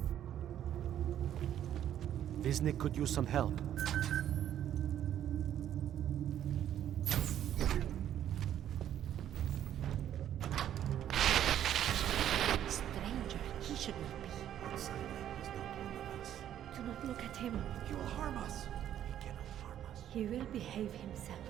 Wisnik could use some help. Stranger, he should not be. Outsider is not one of us. Do not look at him. He will harm us. He cannot harm us. He will behave himself.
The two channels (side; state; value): left; quieter; 10.8 dB